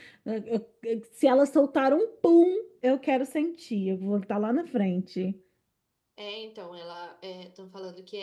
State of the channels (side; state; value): both; identical; correlation 1.00